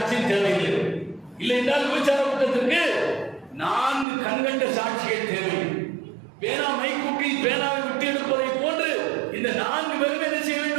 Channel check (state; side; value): drops out; left; at 4.0 s